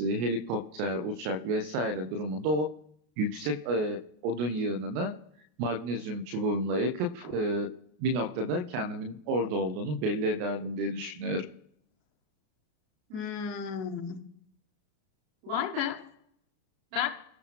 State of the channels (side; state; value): left; late; 33 ms